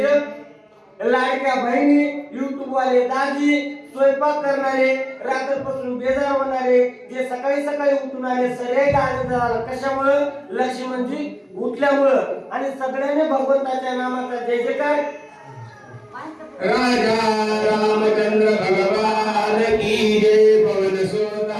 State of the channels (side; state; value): both; identical; correlation 1.00